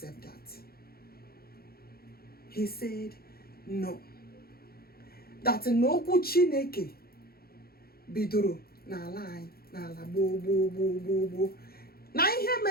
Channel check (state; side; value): late; right; 0.44 ms